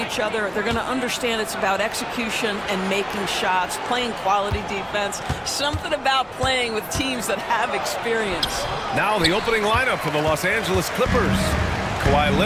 other. They're going to understand it's about execution and making shots, playing quality defense, something about playing with teams that have experience. Now the opening lineup for the Los Angeles Clippers. Kawhi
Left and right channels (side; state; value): both; identical; correlation 1.00